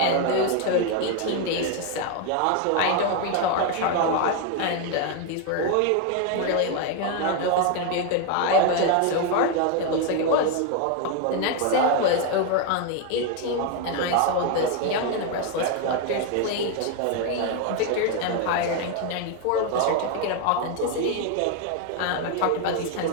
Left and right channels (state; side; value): different; both; correlation 0.01